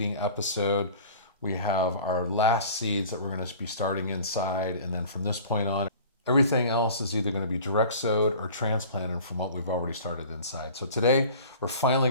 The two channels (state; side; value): inverted; both; correlation -0.43